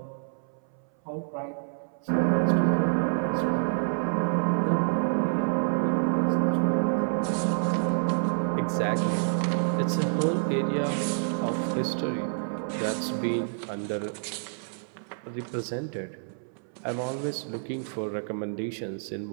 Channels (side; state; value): left; silent; 59 dB below the other